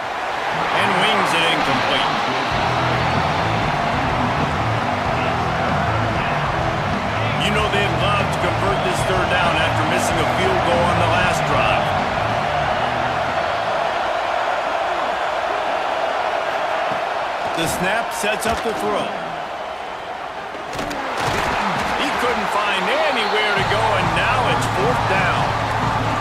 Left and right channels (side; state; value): both; identical; correlation 1.00